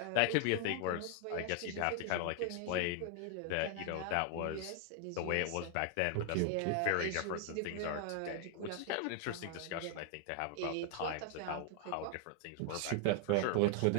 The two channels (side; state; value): both; different; correlation 0.00